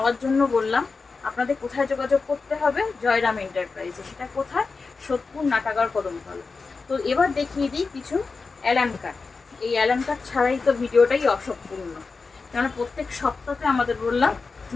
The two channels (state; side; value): quieter; right; 4.4 dB